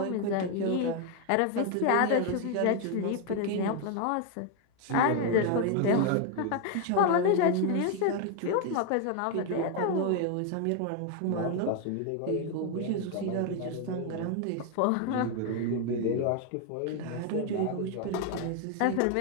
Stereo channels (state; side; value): different; both; correlation 0.01